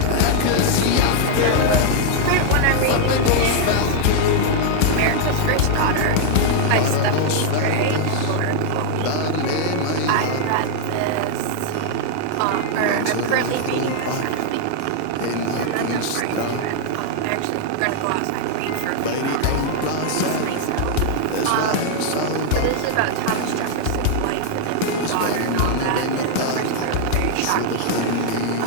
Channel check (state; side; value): different; both; correlation 0.00